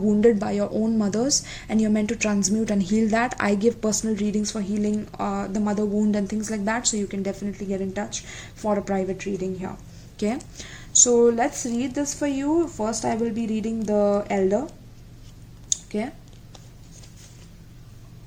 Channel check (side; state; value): both; identical; correlation 1.00